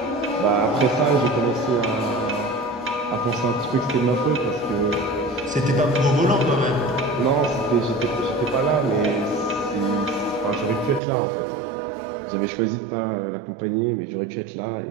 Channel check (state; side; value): drops out; left; at 11.0 s